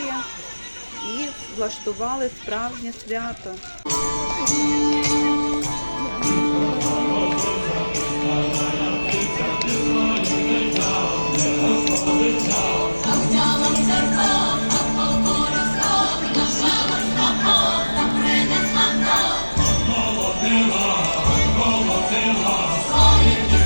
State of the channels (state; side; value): inverted; both; correlation -1.00